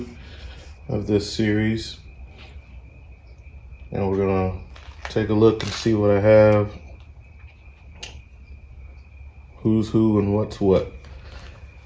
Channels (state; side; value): identical; both; correlation 1.00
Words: of this series. And we're gonna take a look and see what I have, who's who and what's what.